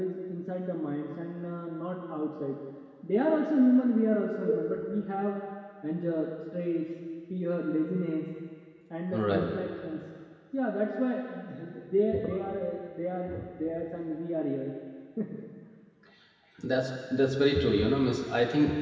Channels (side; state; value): both; identical; correlation 1.00